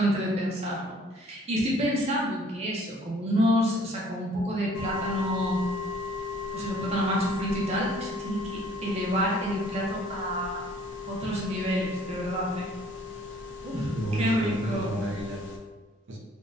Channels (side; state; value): both; normal; correlation 0.57